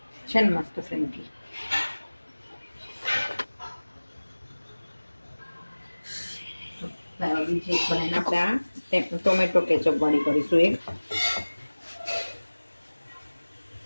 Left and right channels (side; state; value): both; inverted; correlation -1.00